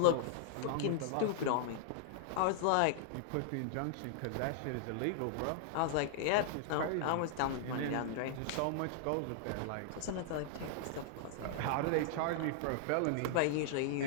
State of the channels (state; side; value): different; both; correlation -0.01